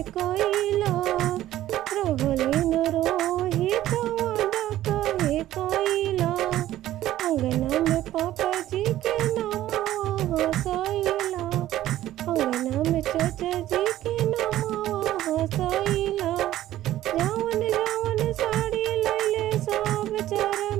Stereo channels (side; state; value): left; quieter; 13.8 dB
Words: कइला, रहले न रोहे तवादा काहे कइला। अंगना में पापा जी के नाम हसैला, अंगना में चाचा जी के नाम हसैला। जवन जवन साड़ी लैले सब 4